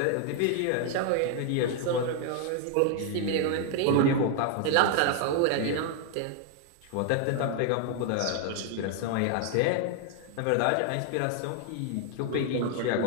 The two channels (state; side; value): different; both; correlation 0.00